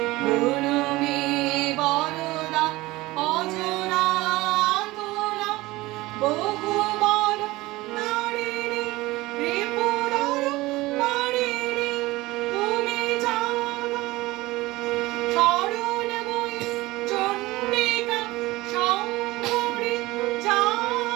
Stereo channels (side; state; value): left; quieter; 19.7 dB